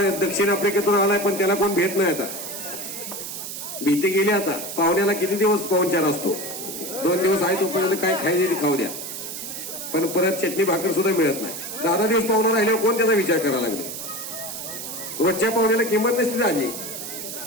दक्षिण आफ्रिकेतून आलाय, पण त्याला कोण भेट नाही. आता भीती गेली. आता पाहुण्याला किती दिवस पाहुणचार असतो, 2 दिवस आहे तोपर्यंत काय खायचे खाऊ द्या, पण परत चटणी भाकर सुद्धा मिळत नाही. 10 दिवस पाहुणा राहिल्यावर कोण त्याचा विचार करायला लागले. रोजच्या पाहुण्याला किंमत नसते आजी.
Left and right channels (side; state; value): right; noise; hiss, 8 dB below the sound